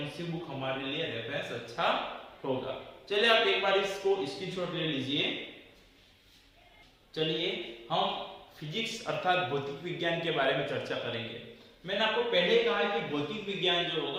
सी बुक हमारे लिए रेफरेंस अच्छा होगा। चलिए आप एक बार इसको स्क्रीनशॉट ले लीजिए। चलिए हम फिजिक्स अर्थात भौतिक विज्ञान के बारे में चर्चा करेंगे। मैंने आपको पहले कहा है कि भौतिक विज्ञान जो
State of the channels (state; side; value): identical; both; correlation 1.00